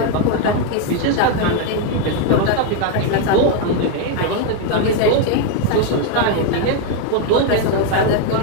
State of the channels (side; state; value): both; different; correlation 0.01